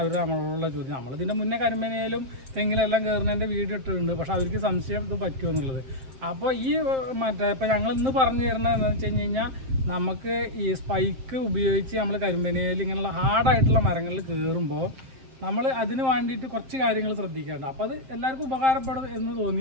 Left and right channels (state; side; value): late; left; 7.6 ms